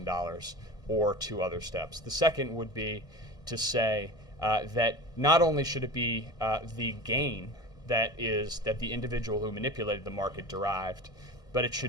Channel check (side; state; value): right; late; 1.6 ms